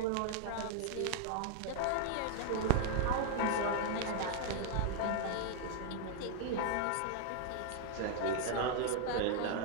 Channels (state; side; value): different; both; correlation 0.00